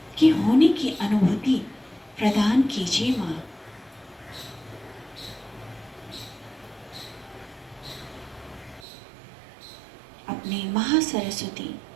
की होने की अनुभूति प्रदान कीजिए माँ। अपने महासरस्वती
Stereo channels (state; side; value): drops out; left; at 8.8 s